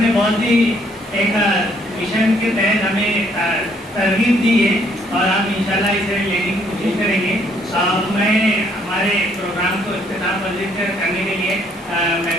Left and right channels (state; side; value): normal; both; correlation 0.67